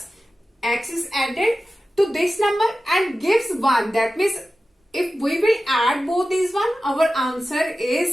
x is added to this number and gives 1. That means if we will add both these one, our answer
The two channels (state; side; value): normal; both; correlation 0.94